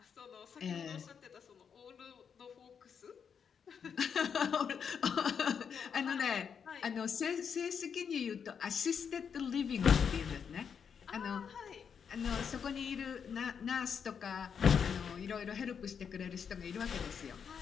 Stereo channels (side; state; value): right; quieter; 7.0 dB